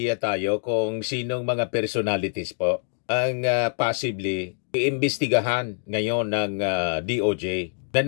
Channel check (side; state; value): right; silent; digital silence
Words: tayo kung sinong mga personalities po ang possibly iimbestigahan ngayon ng DOJ na